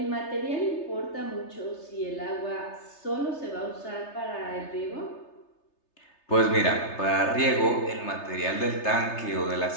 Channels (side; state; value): right; late; 3.3 ms